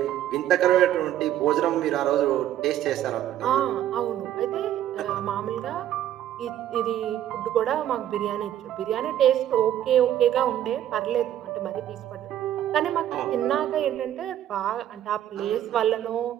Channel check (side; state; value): left; quieter; 11.7 dB